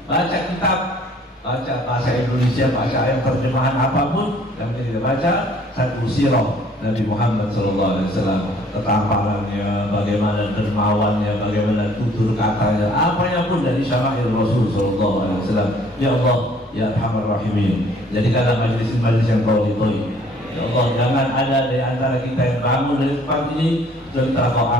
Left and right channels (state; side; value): normal; both; correlation 0.57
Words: baca kitab, baca bahasa Indonesia, baca ayat terjemahan apapun yang kita baca, satu sirah Nabi Muhammad SAW, ketampangannya, bagaimana dermawannya, bagaimana tutur katanya, apanya pun dari syama'il Rasul SAW. Ya Allah, ya Arhamar Rahimin, jadikanlah majlis-majlis yang kau ridhoi. Ya Allah, jangan ada dari antara kita yang bangun dari tempat ini serta Kau